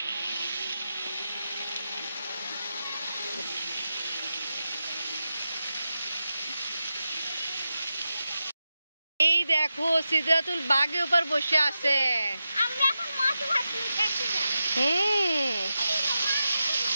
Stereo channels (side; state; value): both; inverted; correlation -0.91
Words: এই দেখো, সিদরাতুল বাগের উপর বসে আছে। আমরা এখন মধু ভাতি দেখতে যাব।